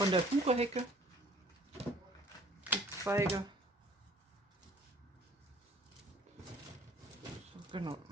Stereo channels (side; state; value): both; normal; correlation 0.54